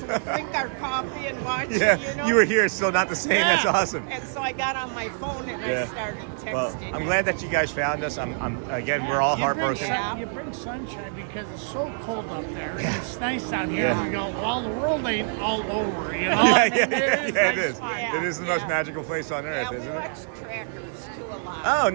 we drink our coffee and watch Yeah, it, you know. you were here, still not the same. Yeah. That's awesome. And so I got on my phone and Yeah. I started texting. Well, I'm him. glad that you guys found us. Again, we're all You bring heartbroken. you bring sunshine because it's so cold up there. And it's nice down here. And we go, well, the world ain't all over, you know? I mean, it nice is. fun. It is the most magical place on earth, Yeah, we isn't it? watch trackers too a lot. Oh,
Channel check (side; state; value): left; silent; 61 dB below the other